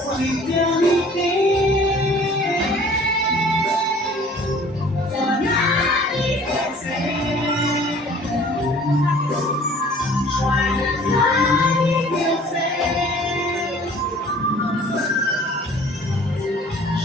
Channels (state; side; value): normal; both; correlation 0.51